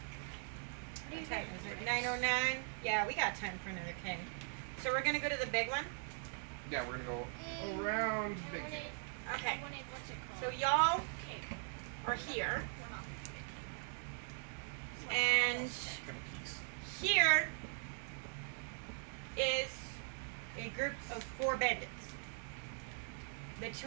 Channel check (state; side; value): silent; left; 51 dB below the other